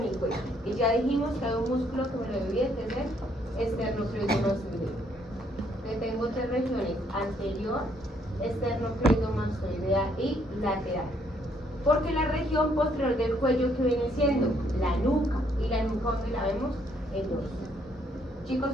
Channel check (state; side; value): normal; both; correlation 0.69